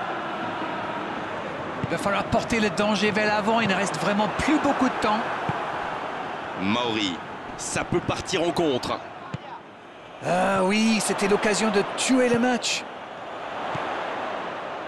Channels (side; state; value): both; identical; correlation 1.00